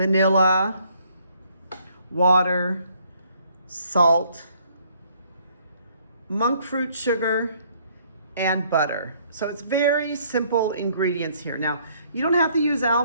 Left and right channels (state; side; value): inverted; both; correlation -0.65